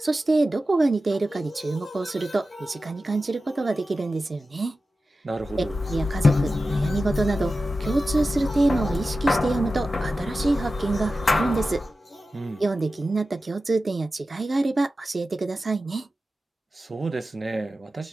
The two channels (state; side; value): normal; both; correlation 0.93